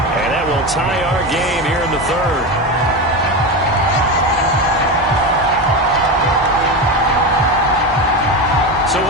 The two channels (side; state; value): both; normal; correlation 0.19